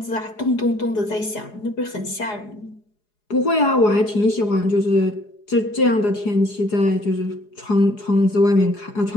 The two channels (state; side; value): late; right; 4.8 ms